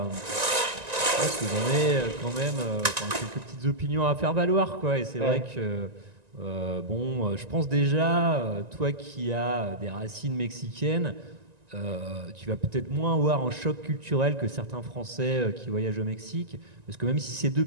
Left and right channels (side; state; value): left; late; 1.9 ms